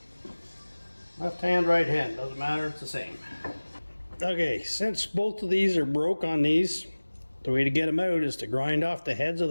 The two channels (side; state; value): both; inverted; correlation -1.00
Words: Left hand, right hand, doesn't matter, it's the same. Okay, since both of these are broke on these, the way to get them out is to grind off the heads of